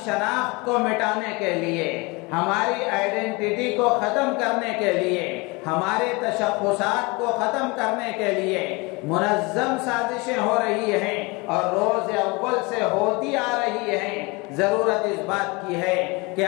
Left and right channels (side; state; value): right; quieter; 26.4 dB